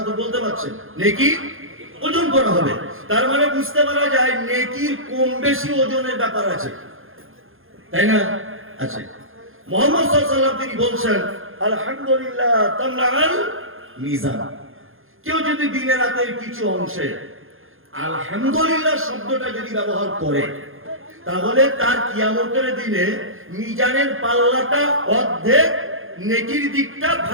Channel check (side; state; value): left; late; 0.60 ms